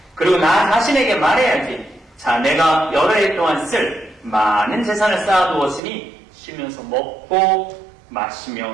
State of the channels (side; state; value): left; drops out; at 5.8 s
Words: 그리고 나 자신에게 말해야지. 자, 내가 여러 해 동안 쓸 많은 재산을 쌓아두었으니 쉬면서 먹고 마시며